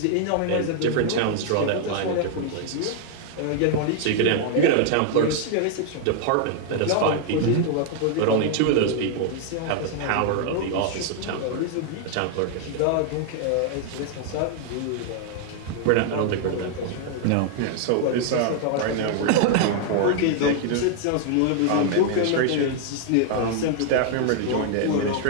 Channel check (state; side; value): different; both; correlation 0.00